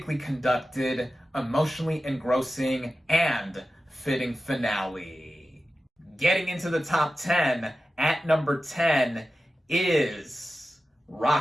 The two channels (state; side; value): normal; both; correlation 0.93